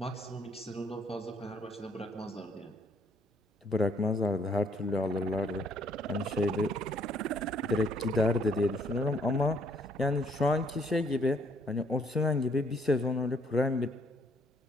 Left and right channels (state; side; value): normal; both; correlation 0.65